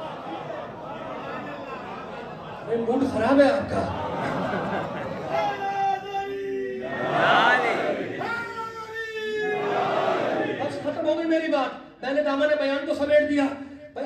موڈ خراب ہے آپ کا. بس ختم ہو گئی میری بات. میں نے دامن بیان کو سمیٹ دیا. بھائی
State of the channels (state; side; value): identical; both; correlation 1.00